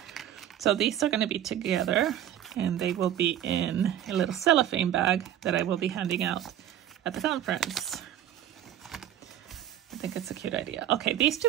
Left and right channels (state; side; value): quieter; left; 11.0 dB